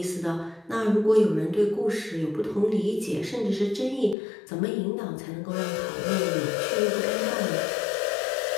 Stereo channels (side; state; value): right; drops out; at 4.2 s